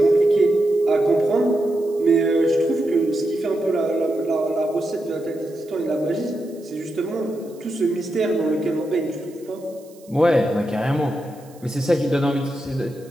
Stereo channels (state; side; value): noise; right; hiss, 27 dB below the sound